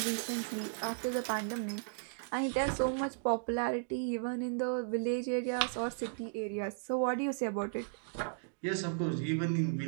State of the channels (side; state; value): left; silent; digital silence